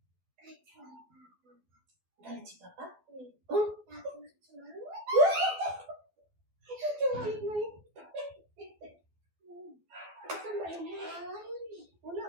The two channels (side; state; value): left; late; 12 ms